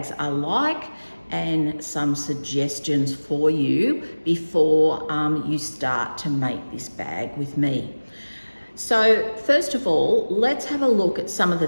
are like and some suggestions for you before you start to make this bag with me. So first of all, let's have a look at some of the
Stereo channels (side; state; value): both; inverted; correlation -1.00